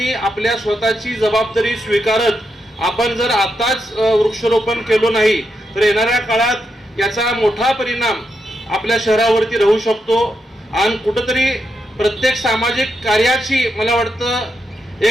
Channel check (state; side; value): normal; both; correlation 0.83